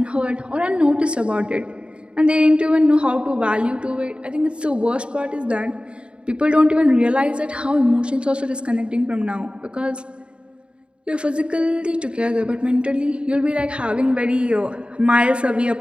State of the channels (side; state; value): left; late; 0.055 ms